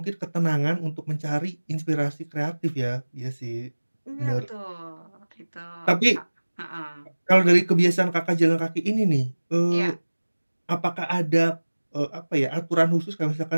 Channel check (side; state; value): both; inverted; correlation -1.00